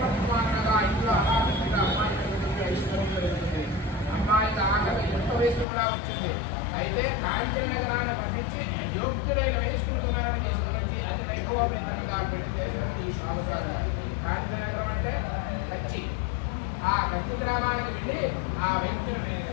ఇంట్లో అమ్మాయి ఐశ్వర్యం జరుగుతుంది. అమ్మాయికి ఆకలి ఎంత వయసు కూడా వచ్చింది. అయితే కాంచన నగరాన్ని పంపించి యోగ్యులైన వయస్కులను తీసుకుని అది వైభవోపేతంగా పెళ్లి చేశారు ఈ షావుదారు గారు. కాంచన నగరం అంటే కచ్చి. ఆ కచ్చి గ్రామానికి వెళ్ళి ఆ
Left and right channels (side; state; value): right; drops out; at 5.7 s